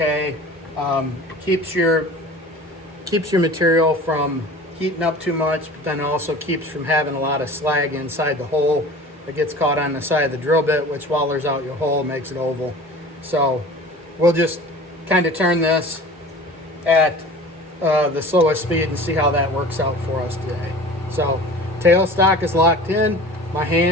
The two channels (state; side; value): normal; both; correlation 0.40